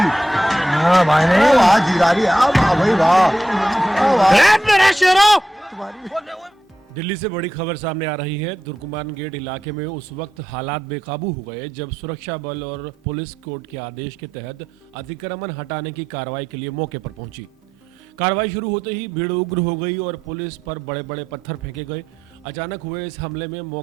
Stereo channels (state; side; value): normal; both; correlation 0.87